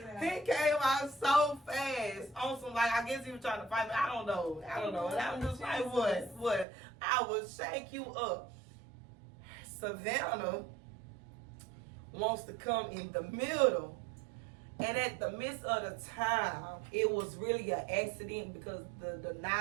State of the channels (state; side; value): drops out; left; at 6.7 s